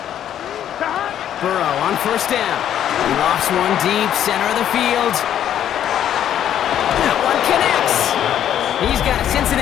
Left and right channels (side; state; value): right; quieter; 10.4 dB